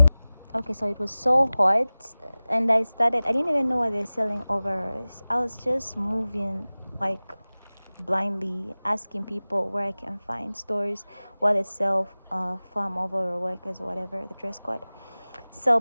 Okay, so it was so hot, and I didn't even know why they're selling overalls. I was just moving like blindly, asking people where I can find stores where they sell farm overall workers or whatever, the dress code. So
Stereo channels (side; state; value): both; inverted; correlation -0.98